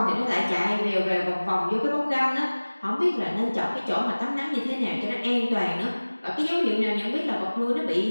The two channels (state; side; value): inverted; both; correlation -1.00